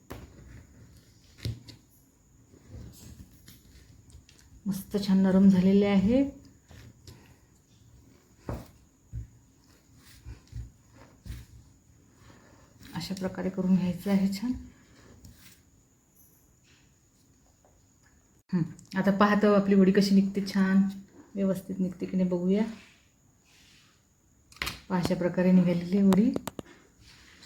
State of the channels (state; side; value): identical; both; correlation 1.00